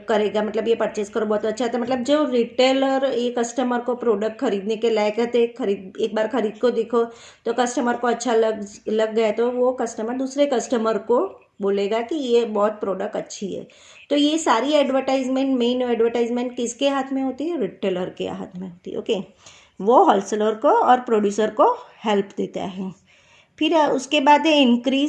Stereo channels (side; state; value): both; identical; correlation 1.00